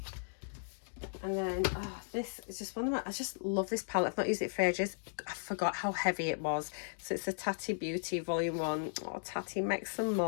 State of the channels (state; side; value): silent; right; digital silence